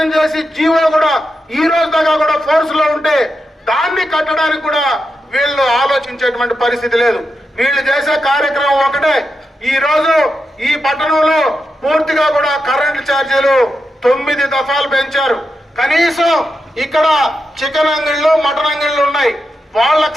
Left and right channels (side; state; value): both; normal; correlation 0.87